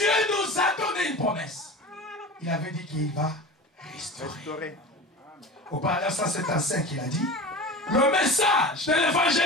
nous a donné une promesse. Il avait dit qu'il va restaurer. Au paragraphe 175, il a dit, le message de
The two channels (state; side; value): normal; both; correlation 0.32